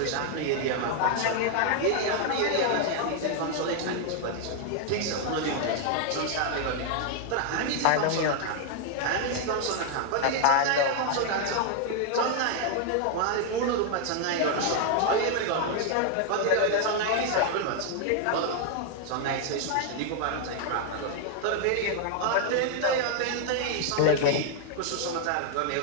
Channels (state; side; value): different; both; correlation 0.00